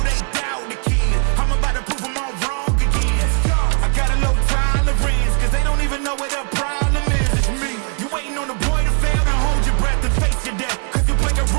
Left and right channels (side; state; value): left; quieter; 37.7 dB